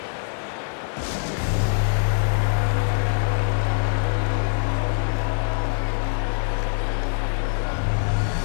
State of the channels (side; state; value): right; silent; digital silence